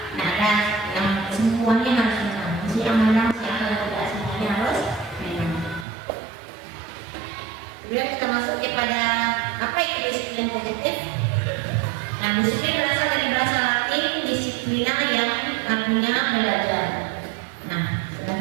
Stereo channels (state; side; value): drops out; left; at 5.9 s